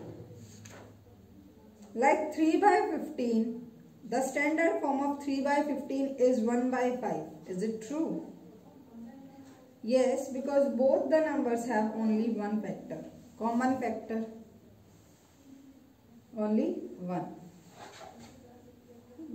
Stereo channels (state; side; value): identical; both; correlation 1.00